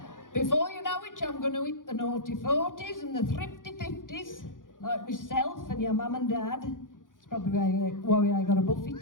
Before you know it, I'm going to hit the naughty 40s and the thrifty 50s, like myself and your mum and dad. It's probably why I got a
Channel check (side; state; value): right; late; 0.89 ms